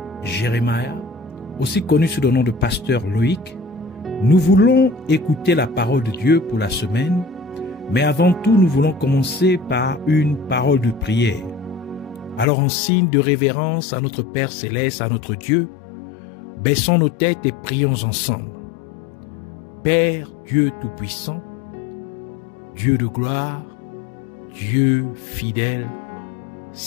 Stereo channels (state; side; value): drops out; right; at 12.5 s